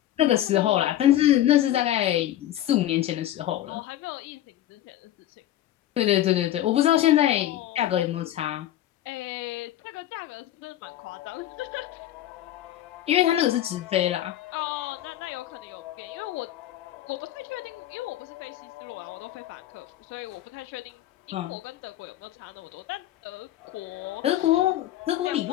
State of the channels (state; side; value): quieter; right; 13.0 dB